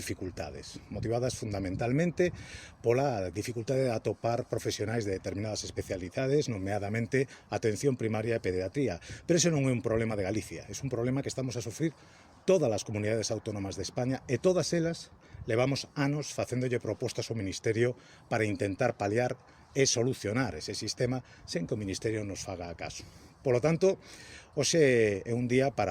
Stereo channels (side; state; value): both; identical; correlation 1.00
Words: motivadas fundamentalmente pola dificultade de atopar profesionais de determinadas especialidades, nomeadamente atención primaria e pediatría. Pero ese non é un problema de Galicia, é un problema que estamos a sufrir todas as comunidades autónomas de España e todas elas levamos anos facéndolle propostas ao Ministerio para intentar paliar e solucionar ese sistema sen que o Ministerio nos faga caso. Polo tanto, hoxe é un día